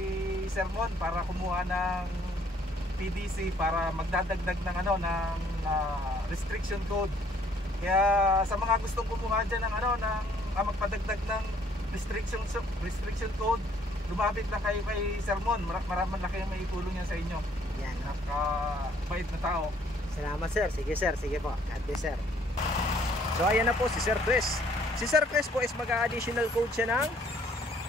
Sir Mon para kumuha ng PDC para magdadagdag ng restriction code. Kaya sa mga gustong kumuha diyan ng magpadagdag ng restriction code, lumapit na kayo kay Sir Mon. Maraming laki ang maitulong niya sa inyo. Yan. Napakabait na tao. Salamat sir. Sige sir. Sige po. God bless sir. So ayan na po si Sir Chris. Si Sir Chris po is mag-additional code siya ng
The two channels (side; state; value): both; normal; correlation 0.62